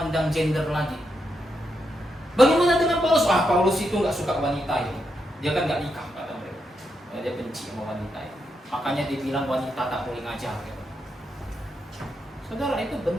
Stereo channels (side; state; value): both; normal; correlation 0.83